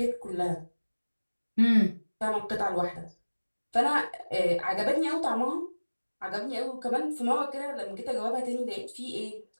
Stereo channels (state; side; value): inverted; both; correlation -1.00